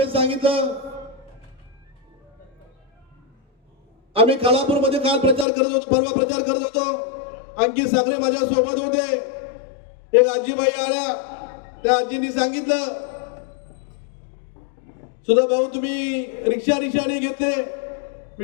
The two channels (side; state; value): right; drops out; at 5.5 s